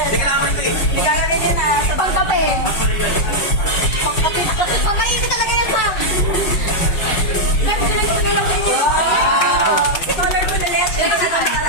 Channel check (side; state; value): right; late; 5.5 ms